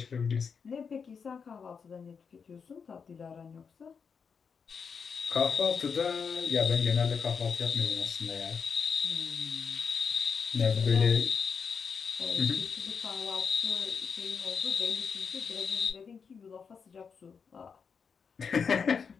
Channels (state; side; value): quieter; right; 6.0 dB